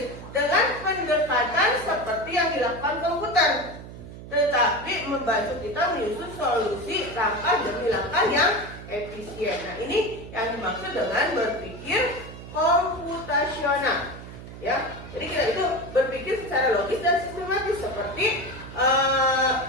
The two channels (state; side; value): noise; right; hum, 13 dB below the sound